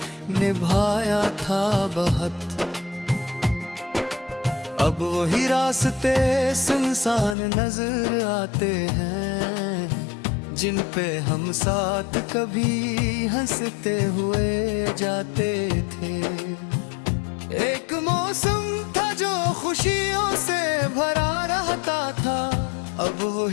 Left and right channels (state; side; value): drops out; right; at 7.4 s